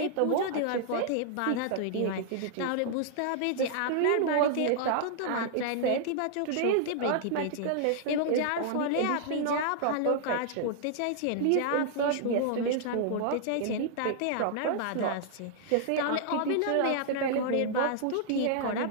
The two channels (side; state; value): both; different; correlation -0.01